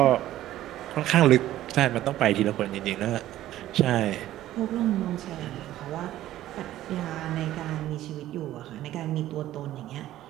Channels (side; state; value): left; quieter; 13.9 dB